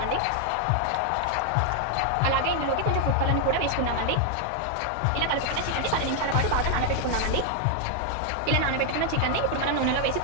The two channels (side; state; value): both; different; correlation 0.00